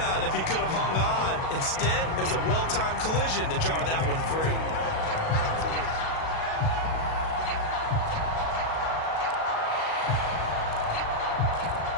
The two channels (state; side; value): late; right; 37 ms